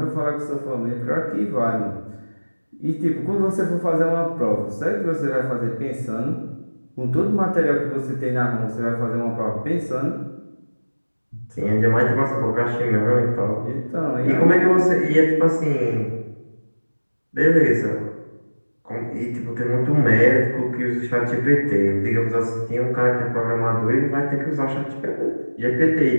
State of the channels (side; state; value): both; inverted; correlation -1.00